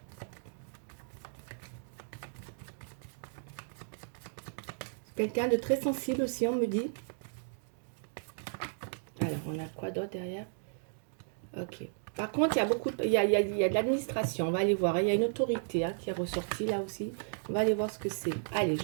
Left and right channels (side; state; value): left; silent; digital silence